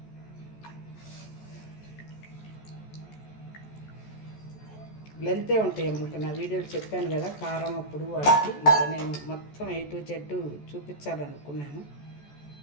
లెంతే ఉంటాయి అమ్మ. నా వీడియోలు చెప్పాను కదా కారం అప్పుడు వాటికి, ఇంకా నేను మొత్తం A to Z చూపించాలనుకున్నాను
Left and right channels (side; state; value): right; late; 14 ms